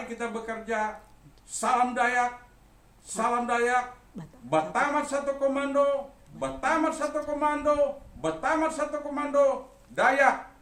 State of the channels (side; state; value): both; identical; correlation 1.00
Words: kita bekerja. Salam Dayak, salam Dayak, Batamat satu komando, Batamat satu komando, Batamat satu komando, Dayak,